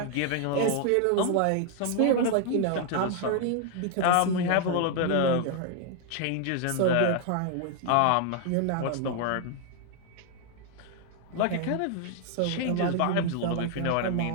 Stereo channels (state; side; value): different; both; correlation 0.00